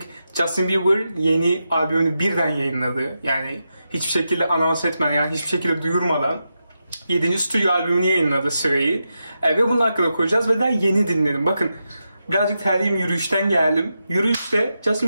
Justin Bieber yeni albümünü birden yayınladı. Yani hiçbir şekilde anons etmeden, yani hiçbir şekilde duyurmadan 7. stüdyo albümünü yayınladı Sway'i. Ve bunun hakkında konuşacağız ve daha yeni dinledim. Bakın, birazcık terliyim, yürüyüşten geldim. Yürüyüşte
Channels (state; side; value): inverted; both; correlation -0.88